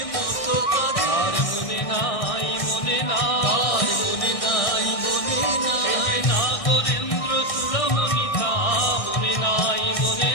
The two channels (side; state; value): right; late; 1.6 ms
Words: মতো কাঁদে। আর মনে নাই মনে নাই আর মনে নাই মনে নাই, এই যে নাগরেন্দ্র চূড়ামণিতা, মনে নাই মনে